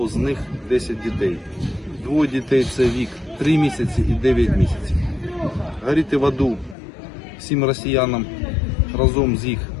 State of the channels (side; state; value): right; drops out; at 6.8 s